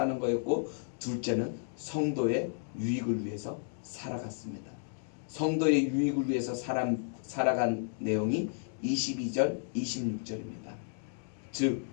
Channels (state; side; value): silent; right; digital silence